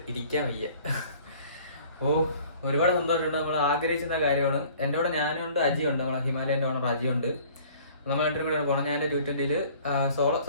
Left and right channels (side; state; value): both; inverted; correlation -0.52